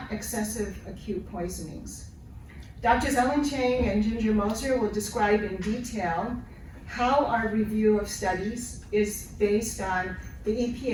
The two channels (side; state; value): both; identical; correlation 1.00